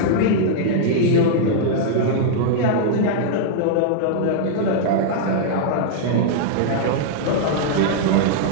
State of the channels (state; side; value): different; both; correlation -0.02